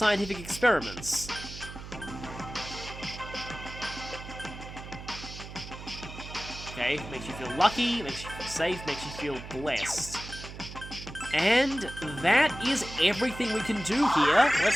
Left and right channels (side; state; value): right; noise; hum, 12 dB below the sound